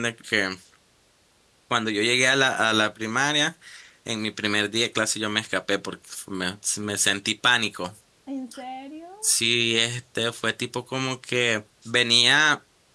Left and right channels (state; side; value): identical; both; correlation 1.00